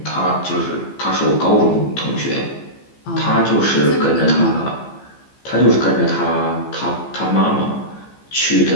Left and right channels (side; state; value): right; late; 15 ms